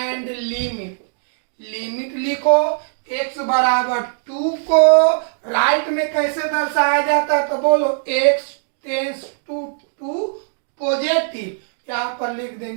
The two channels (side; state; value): left; silent; digital silence